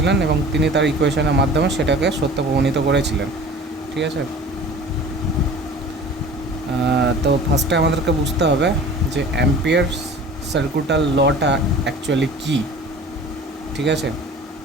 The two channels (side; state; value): both; normal; correlation 0.42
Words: এবং তিনি তার ইকুয়েশনের মাধ্যমে সেটাকে সত্য প্রমাণিত করেছিলেন। ঠিক আছে? তো ফার্স্টে আমাদেরকে বুঝতে হবে যে অ্যাম্পিয়ারস সার্কিটাল লটা অ্যাকচুয়ালি কী। ঠিক আছে?